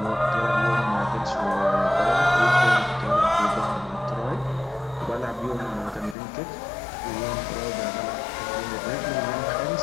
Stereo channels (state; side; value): drops out; right; at 6.2 s